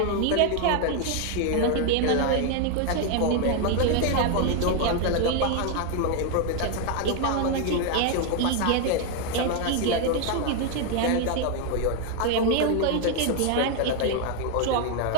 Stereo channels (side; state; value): both; different; correlation 0.01